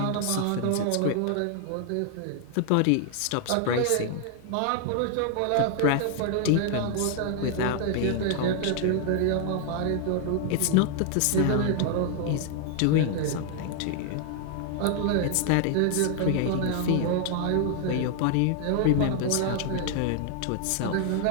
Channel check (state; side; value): different; both; correlation 0.00